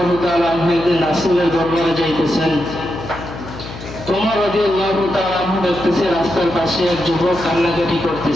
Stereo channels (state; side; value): noise; left; hum, 12 dB below the sound